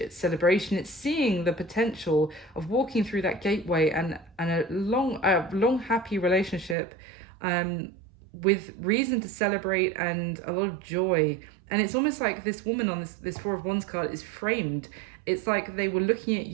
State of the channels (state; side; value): drops out; left; at 6.8 s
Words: celebration. It's seeing the potential of walking through that gateway and a long happy relationship with reason to celebrate and a lot of joy. And it's almost like this woman on this Four of Wands card is framed. It's like they were looking at